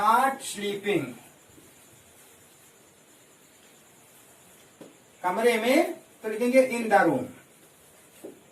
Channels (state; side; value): identical; both; correlation 1.00